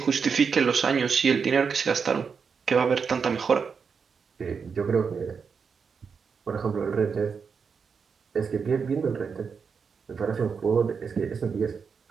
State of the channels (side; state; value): left; quieter; 5.9 dB